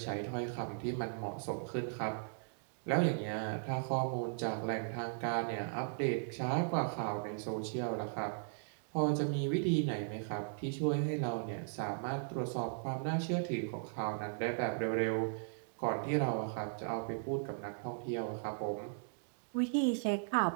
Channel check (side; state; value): left; silent; digital silence